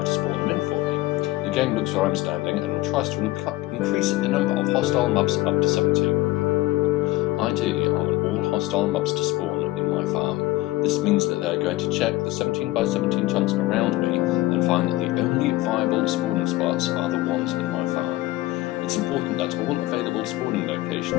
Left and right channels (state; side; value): quieter; right; 18.3 dB